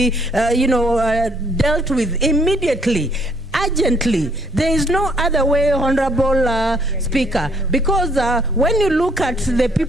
dealt with immediately. Urgently. There is no other way, Honorable Speaker, because when you look at the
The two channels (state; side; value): normal; both; correlation 0.66